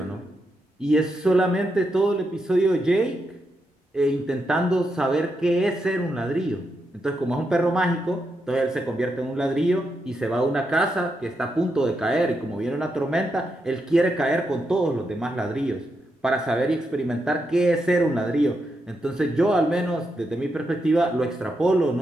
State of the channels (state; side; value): normal; both; correlation 0.83